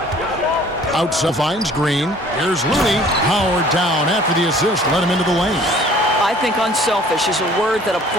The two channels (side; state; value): both; normal; correlation 0.53